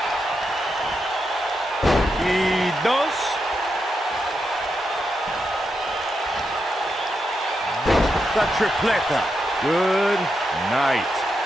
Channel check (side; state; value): both; normal; correlation 0.85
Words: Y dos. The tripleta. Good night.